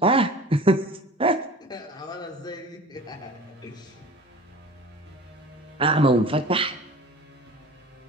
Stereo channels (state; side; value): normal; both; correlation 0.41